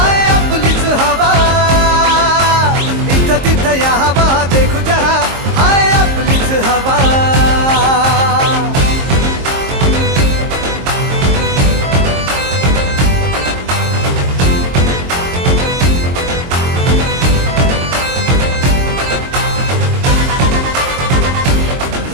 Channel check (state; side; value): late; left; 22 ms